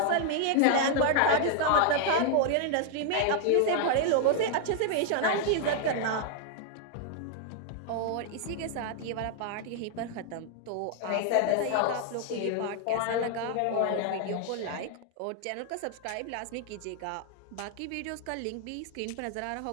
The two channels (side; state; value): both; different; correlation 0.00